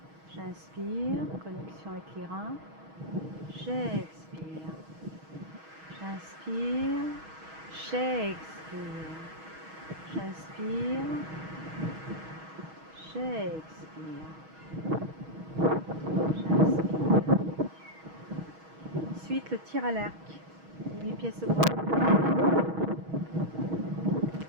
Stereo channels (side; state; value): left; late; 6.3 ms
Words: J'inspire, connexion avec les reins. J'expire. J'inspire, j'expire. J'inspire, j'expire. J'inspire. Ensuite, le tir à l'arc. 8 pièces de bois.